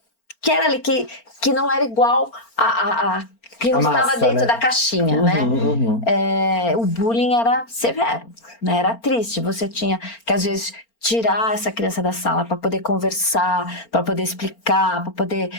era ali, que não era igual a que não A estava massa, dentro né? da caixinha, né? O bullying era severo, né? Era triste. Você tinha que, às vezes, tirar essa criança da sala para poder conversar, para poder explicar, para poder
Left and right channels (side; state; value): right; late; 4.4 ms